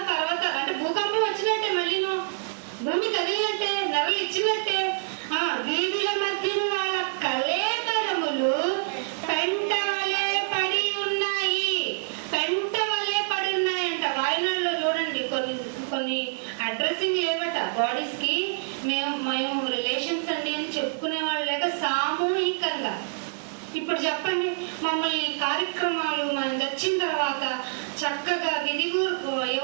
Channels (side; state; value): left; silent; digital silence